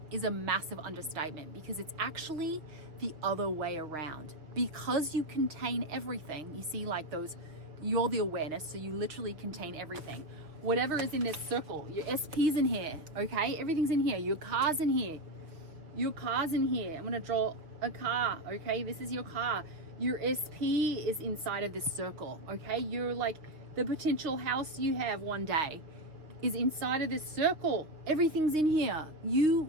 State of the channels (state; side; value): late; left; 6.3 ms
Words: is a massive understatement, because it's actually the other way around. Because you contain everything, you see, like you're the awareness, so you literally contain everything. Whatever is in this circle, your SP's in here, okay? Everything's in here. Your car's in here. Your car's in here. I'm gonna draw a car, okay? This is your car. Your SP is inside of this circle, okay? You're like, the potential house you have one day is inside of this circle. Everything's in here. You